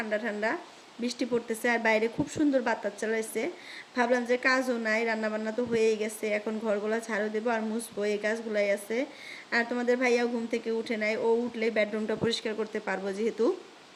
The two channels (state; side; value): identical; both; correlation 1.00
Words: ঠান্ডা, বৃষ্টি পড়তেছে আর বাইরে খুব সুন্দর বাতাস চালাইছে। ভাবলাম যে কাজও নাই, রান্নাবান্না তো হয়েই গেছে, এখন ঘরগুলো ঝাড়ু দেবো আর মুছবো, এই কাজগুলাই আছে। আর তোমাদের ভাইয়াও ঘুম থেকে উঠে নাই, ও উঠলে বেডরুমটা পরিষ্কার করতে পারবো যেহেতু,